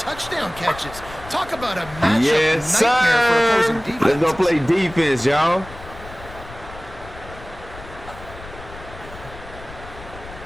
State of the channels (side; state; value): left; noise; rumble, 16 dB below the sound